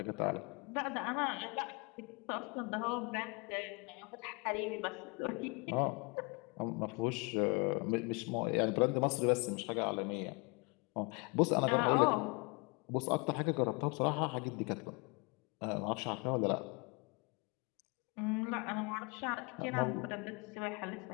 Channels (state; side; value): quieter; right; 30.9 dB